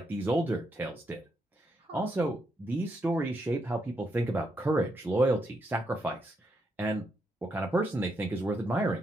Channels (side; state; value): both; normal; correlation 0.80